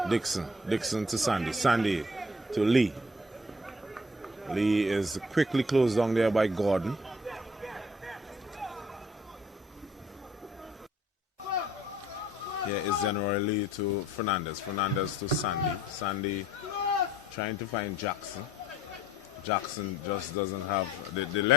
Dixon. Dixon to Sandy. Sandy to Lee. Lee is quickly closed down there by Gordon. Here is General Lee to Fernandez. Fernandez to Sandy. Sandy trying to find Jackson. Jackson just doesn't have the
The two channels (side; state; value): both; normal; correlation 0.57